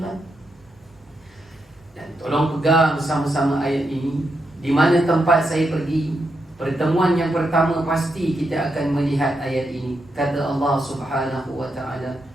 Dan tolong pegang bersama-sama ayat ini. Di mana tempat saya pergi, pertemuan yang pertama pasti kita akan melihat ayat ini. Kata Allah Subhanahu wa taala,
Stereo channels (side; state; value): both; normal; correlation 0.83